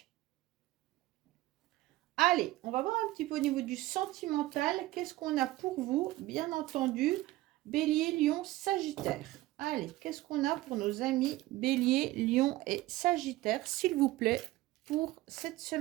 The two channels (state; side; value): quieter; left; 17.5 dB